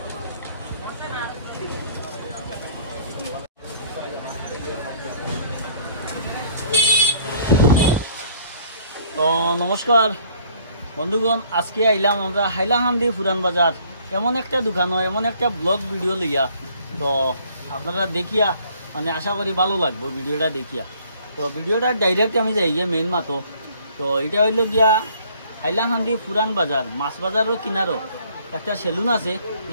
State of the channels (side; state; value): both; inverted; correlation -0.60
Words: নমস্কার বন্ধুগণ, আজকে আইলাম আমরা হাইলাকান্দি পুরান বাজার এমন একটা দোকান, এমন একটা ব্লগ ভিডিও লইয়া। তো আপনারা দেখিয়া মানে আশা করি ভালো লাগবে ভিডিওটা দেখিয়া। তো ভিডিওটা ডাইরেক্ট আমি যাই গিয়ে মেইন মাতো। তো এটা হইল গিয়া হাইলাকান্দি পুরান বাজার, মাছ বাজারও কিনারও একটা সেলুন আছে।